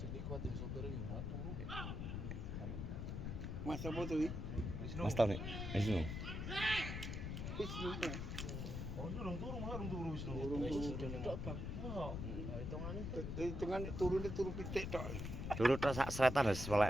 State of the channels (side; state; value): left; noise; rumble, 4 dB below the sound